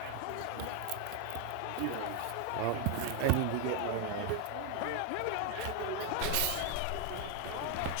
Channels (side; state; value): both; different; correlation 0.00